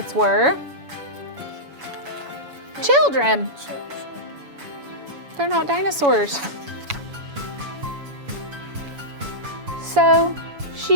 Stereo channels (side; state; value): left; late; 7.1 ms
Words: were children. They're not dinosaurs. So